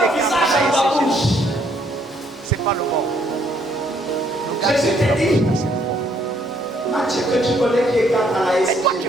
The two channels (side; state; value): both; normal; correlation 0.68